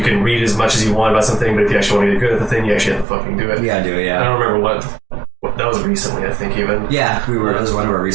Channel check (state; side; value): drops out; left; at 3.1 s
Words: can read as much as you want about something, but if you actually want to get good at the thing, you actually have to fucking do it. You gotta do it, yeah. I don't remember what that was recently, I think, even. Yeah, that was one of our